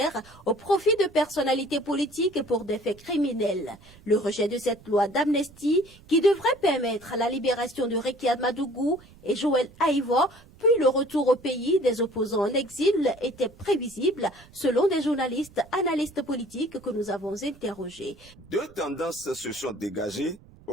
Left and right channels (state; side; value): noise; right; rumble, 24 dB below the sound